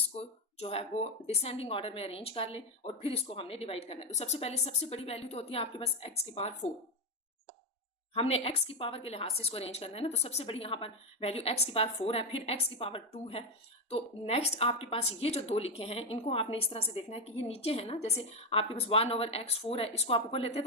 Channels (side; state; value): both; normal; correlation 0.10